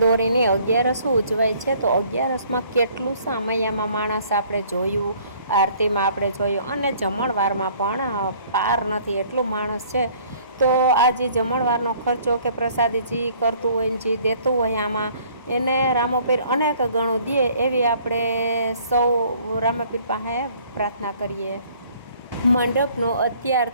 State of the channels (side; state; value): both; inverted; correlation -0.57